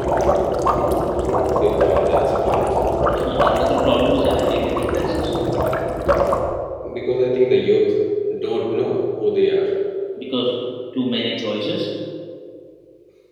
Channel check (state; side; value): identical; both; correlation 1.00